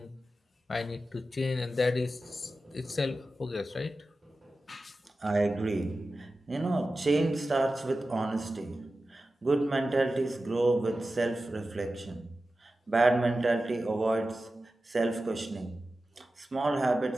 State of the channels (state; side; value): normal; both; correlation 0.93